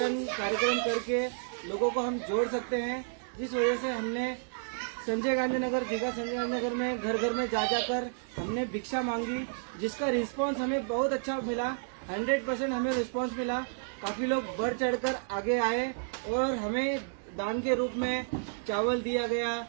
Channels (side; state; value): left; silent; digital silence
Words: कार्यक्रम करके लोगों को हम जोड़ सकते हैं। जिस वजह से हमने संजय गांधी नगर, दीघा संजय गांधी नगर में घर घर में जा जाकर हमने भिक्षा मांगी, जिसका रिस्पांस हमें बहुत अच्छा मिला। 100% हमें रिस्पांस मिला। काफी लोग बढ़ चढ़कर आगे आए और हमें दान के रूप में चावल दिया गया,